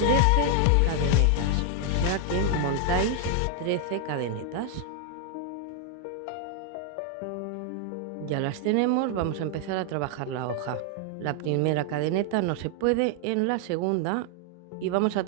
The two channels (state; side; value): different; both; correlation 0.00